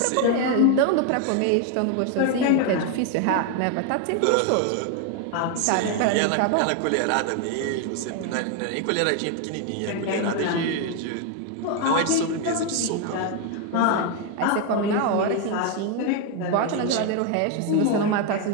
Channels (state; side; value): different; both; correlation 0.01